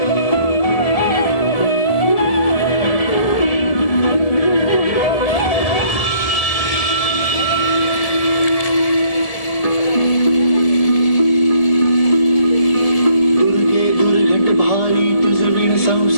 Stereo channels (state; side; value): late; right; 1.7 ms